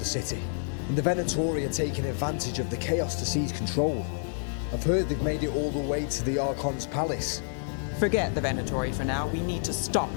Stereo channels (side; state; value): right; silent; digital silence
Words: city, and the Venatori are taking advantage of the chaos to seize control. I've heard they've made it all the way to the Archon's palace. Forget the Venatori for now. We need to stop